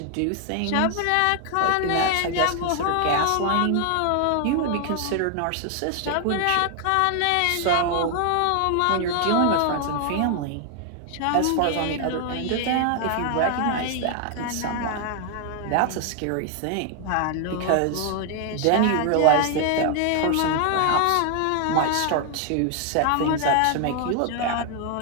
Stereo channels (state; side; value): different; both; correlation 0.00